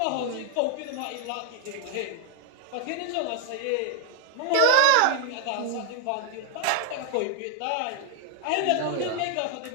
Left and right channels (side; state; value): both; different; correlation 0.00